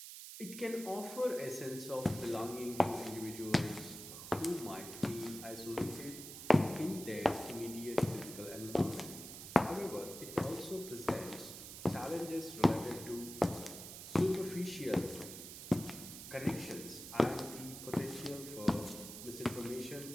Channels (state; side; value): noise; right; hiss, 11 dB below the sound